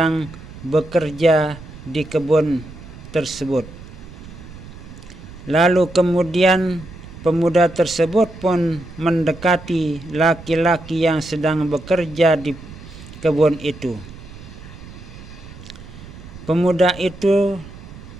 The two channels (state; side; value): noise; right; rumble, 16 dB below the sound